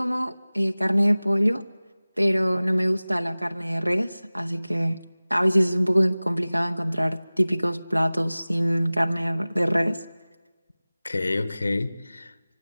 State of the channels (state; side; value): inverted; both; correlation -0.99